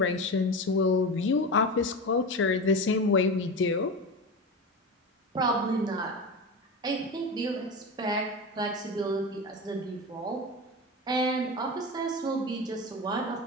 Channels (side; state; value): both; normal; correlation 0.24